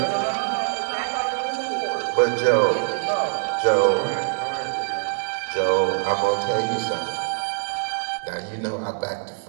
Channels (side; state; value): left; silent; digital silence